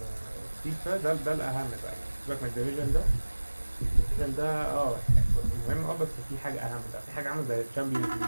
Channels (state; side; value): inverted; both; correlation -1.00